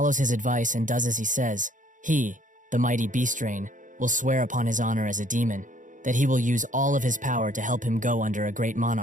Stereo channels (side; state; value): left; late; 0.37 ms